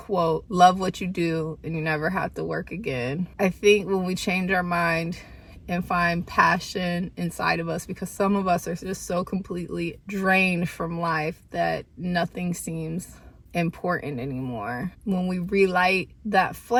love what you do and you never have to work again. I think when we change our mind and find passion inside of us, because some of us are just so completely drained from life that nothing seems important anymore. When we relight that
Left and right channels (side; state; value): both; identical; correlation 1.00